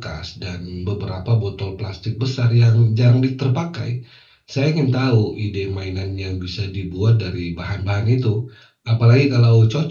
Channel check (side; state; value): both; identical; correlation 1.00